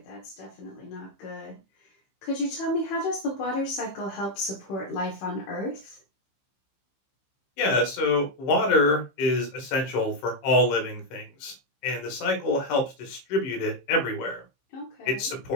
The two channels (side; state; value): right; late; 15 ms